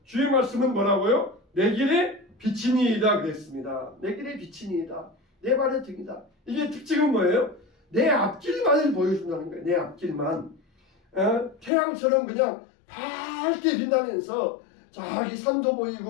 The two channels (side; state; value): right; drops out; at 11.7 s